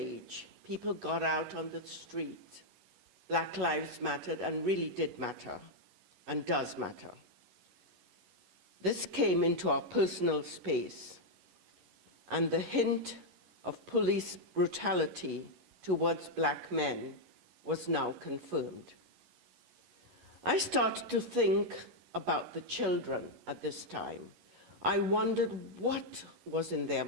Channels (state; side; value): late; left; 11 ms